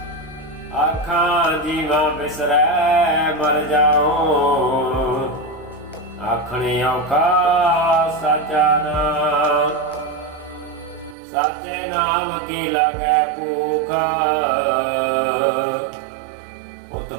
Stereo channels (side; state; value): left; drops out; at 11.2 s